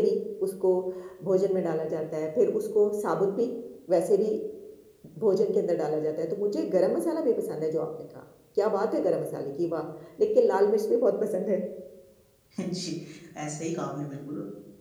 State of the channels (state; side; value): identical; both; correlation 1.00